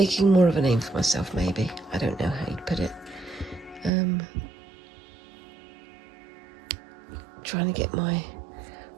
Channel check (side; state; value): left; drops out; at 3.9 s